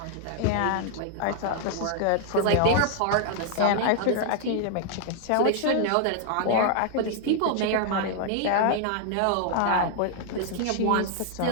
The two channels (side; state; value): both; different; correlation -0.01